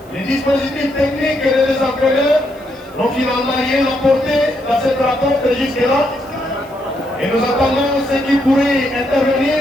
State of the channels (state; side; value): noise; right; hiss, 28 dB below the sound